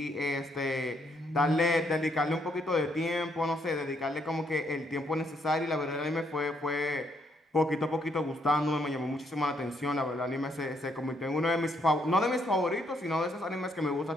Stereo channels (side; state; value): both; normal; correlation 0.73